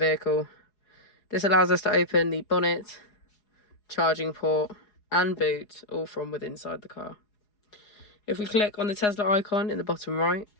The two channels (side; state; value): right; late; 4.8 ms